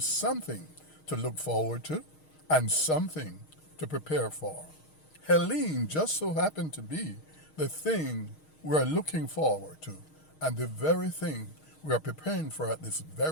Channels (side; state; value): right; late; 6.4 ms